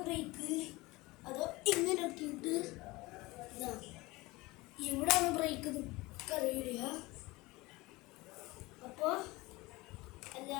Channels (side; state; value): right; quieter; 21.7 dB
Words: ബ്രേക്ക് അതോ ഇങ്ങനെ ആക്കിയിട്ട് ഇതാ ഇവിടെയാണ് ബ്രേക്ക് അറിയില്ല. അപ്പോൾ